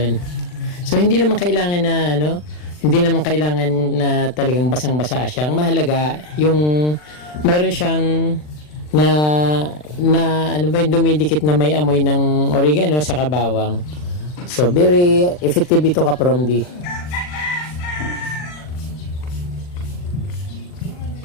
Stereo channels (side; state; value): right; late; 40 ms